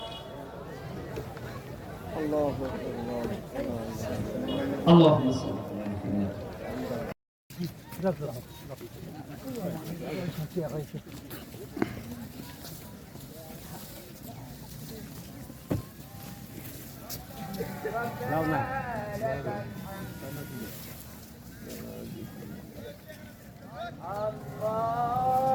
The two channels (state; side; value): identical; both; correlation 1.00